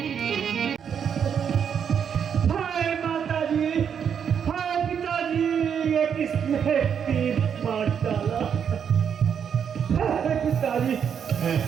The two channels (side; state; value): left; quieter; 7.7 dB